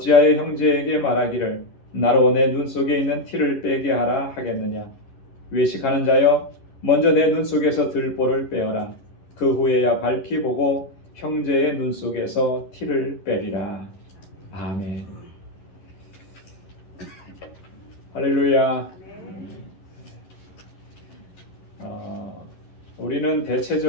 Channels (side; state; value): right; late; 11 ms